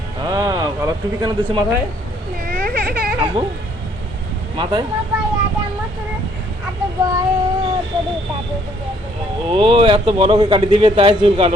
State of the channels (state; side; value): normal; both; correlation 0.65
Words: হ্যাঁ, ভালো টুপি কেন দিছো মাথায় আব্বু? মাথায় ও এত বড় করে কাটি দিবে তাই চুল